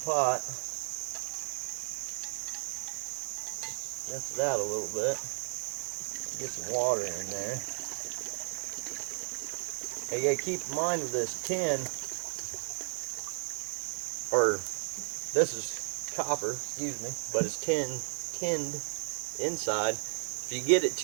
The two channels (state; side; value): silent; left; digital silence